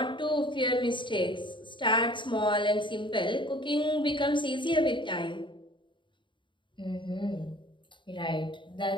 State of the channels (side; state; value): right; late; 0.23 ms